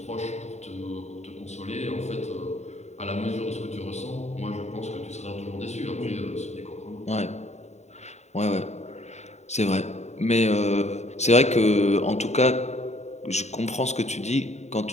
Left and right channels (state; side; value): late; right; 0.32 ms